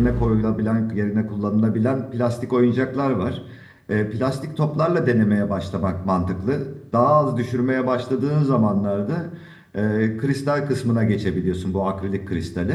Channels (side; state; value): both; identical; correlation 1.00